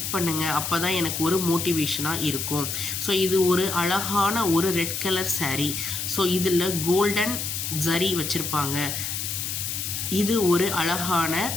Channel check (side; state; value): left; noise; hiss, 3 dB below the sound